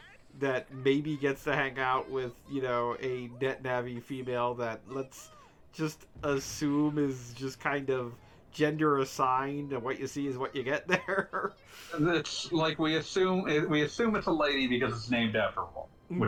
that maybe gets to hang out with, you know, a net navi female that let's just assume is just kind of gender assigned, and what you see is what you get there. It's like we assume it's a lady because it's named after a woman,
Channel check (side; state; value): both; identical; correlation 1.00